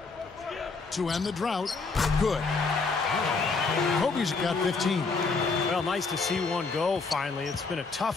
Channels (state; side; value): quieter; right; 4.3 dB